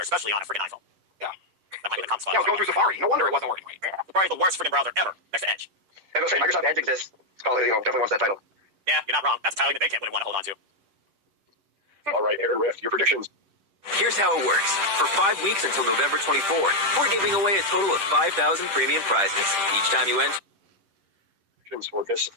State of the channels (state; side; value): late; left; 10 ms